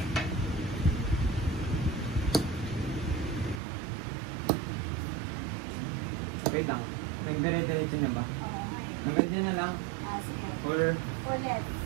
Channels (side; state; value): left; drops out; at 3.6 s